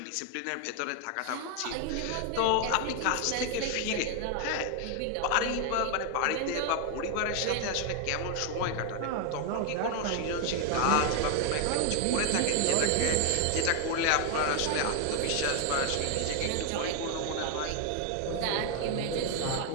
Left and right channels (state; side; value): different; both; correlation 0.00